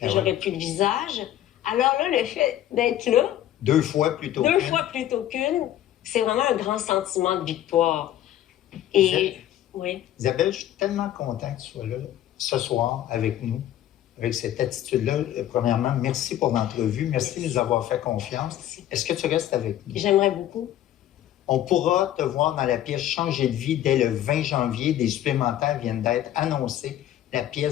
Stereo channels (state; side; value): quieter; right; 12.3 dB